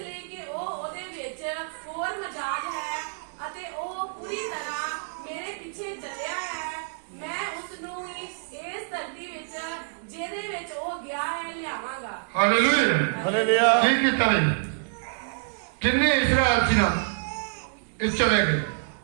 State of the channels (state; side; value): silent; left; digital silence